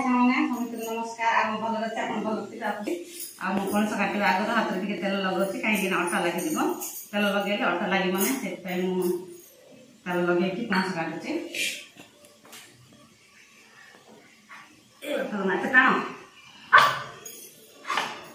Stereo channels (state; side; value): identical; both; correlation 1.00